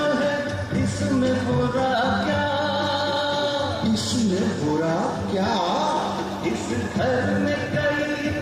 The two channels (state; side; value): identical; both; correlation 1.00